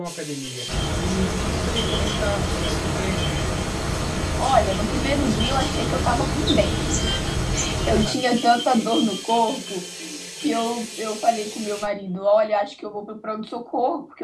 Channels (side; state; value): both; identical; correlation 1.00